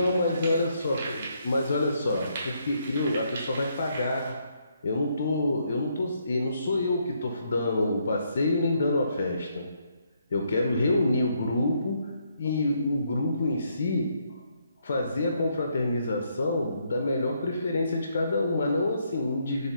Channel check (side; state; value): both; inverted; correlation -0.74